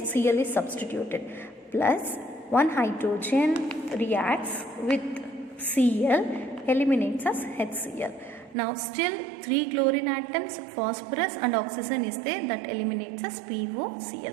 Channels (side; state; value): left; drops out; at 8.6 s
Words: Cl is substituted. Plus one hydrogen reacts with Cl eliminates as HCl. Now still 3 chlorine atoms, phosphorus and oxygen is there, that eliminates as